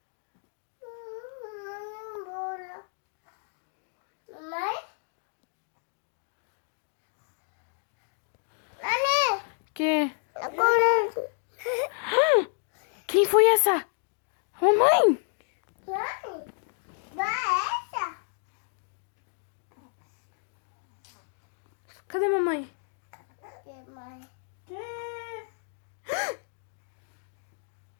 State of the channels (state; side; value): silent; right; digital silence